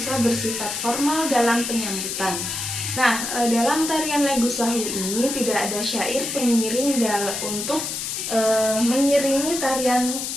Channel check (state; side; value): noise; left; hiss, 4 dB below the sound